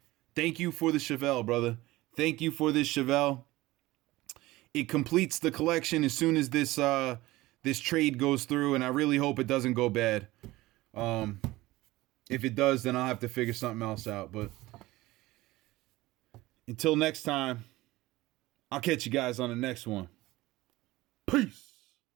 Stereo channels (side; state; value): left; quieter; 18.7 dB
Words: Thank you for the Chevelle, brother. Thank you for this Chevelle. It completes the collection as soon as this this trade goes through, and I really hope it doesn't go bad. If it does, then I'll have to figure something else out. But until next time, I'll catch you guys on the next one. Peace.